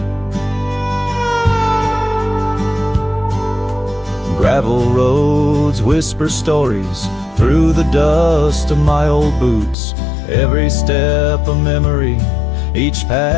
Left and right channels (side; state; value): right; drops out; at 9.8 s